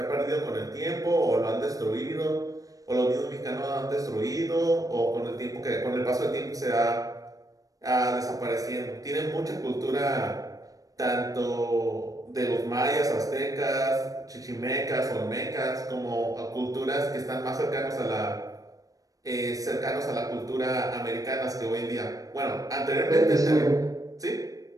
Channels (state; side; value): late; left; 0.17 ms